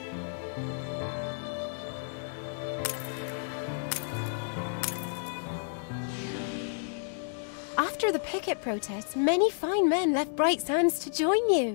After the picket protests, many fine men left Bright Sands to join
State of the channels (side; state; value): right; silent; digital silence